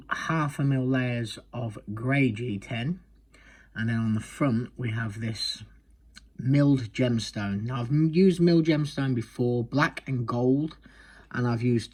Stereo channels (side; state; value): both; identical; correlation 1.00